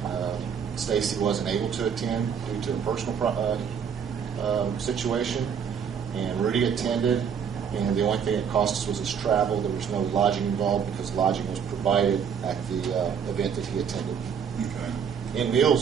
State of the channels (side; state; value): left; quieter; 7.3 dB